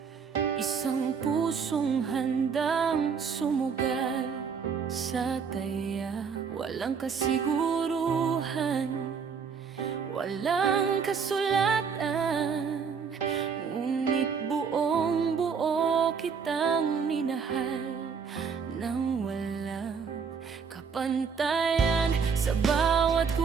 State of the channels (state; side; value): quieter; left; 6.1 dB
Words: isang pusong handang sumugal sa taya. Walang kasiguruhan, walang kasulatan, ngunit buong buo kitang minahal nang walang kapantayan. Sa bawat